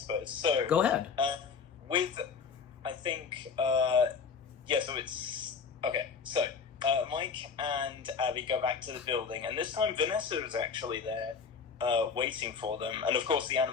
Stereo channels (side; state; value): right; quieter; 5.8 dB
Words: So go ahead. I think, so it's... Okay, so Mike and Abby go back to the building, and this time Vanessa is actually there waiting for them. And of course the